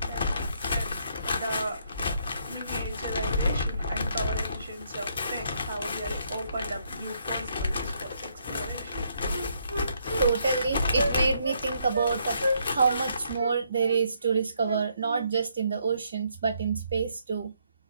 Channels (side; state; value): both; inverted; correlation -0.72